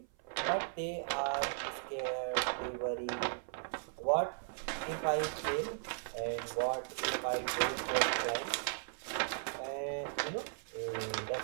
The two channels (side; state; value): left; silent; 53 dB below the other